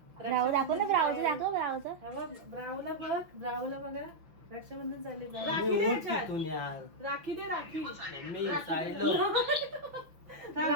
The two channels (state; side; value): late; left; 6.0 ms